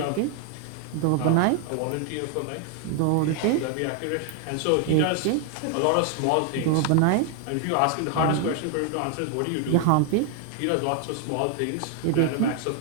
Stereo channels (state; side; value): different; both; correlation 0.00